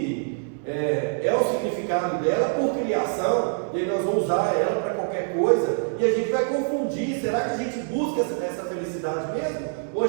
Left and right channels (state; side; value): silent; left; 62 dB below the other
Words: é o significado dela por criação, e aí nós vamos usar ela para qualquer coisa, e a gente vai confundir. Será que a gente busca essa felicidade mesmo? Ou a